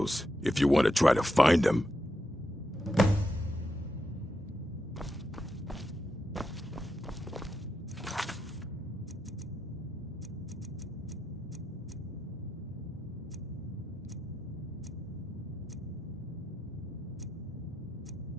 if you want to try to find him.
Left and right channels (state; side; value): normal; both; correlation 0.84